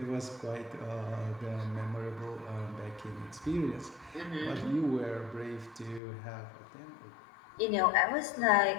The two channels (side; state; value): right; drops out; at 6.0 s